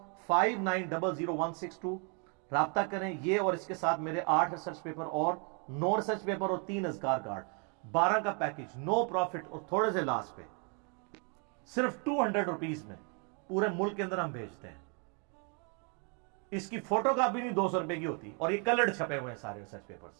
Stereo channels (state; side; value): quieter; left; 37.0 dB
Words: 5900 رابطہ کریں۔ یہ اور اس کے ساتھ میرے 8 ریسرچ پیپر اور 9 ریسرچ پیپر اور 3 اذکار کارڈ، 12 کا پیکج، نو پروفٹ اور تھوڑے سے لاس پہ، صرف 200 روپیز میں پورے ملک کے اندر ہم بھیجتے ہیں۔ اس کی فوٹو کاپی نہیں 200 روپے کی ہوتی، اور یہ کلرڈ چھپے ہوئے ہیں سارے ریسرچ